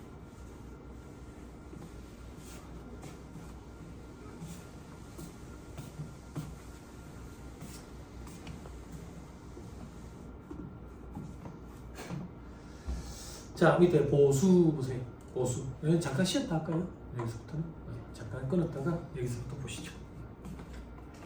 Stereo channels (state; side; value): identical; both; correlation 1.00